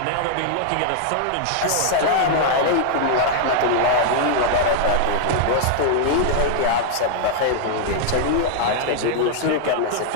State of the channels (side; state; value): both; different; correlation -0.01